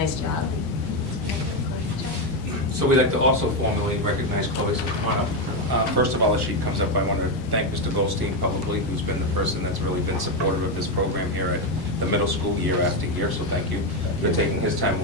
job. So we'd like to also formally recognize Chloe, so come on up. First of all, as she comes up, I want to thank Mr. Goldstein publicly, who's been the person that's really been supportive of this program here at the middle school year after year, so thank you for taking his time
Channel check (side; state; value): right; noise; rumble, 19 dB below the sound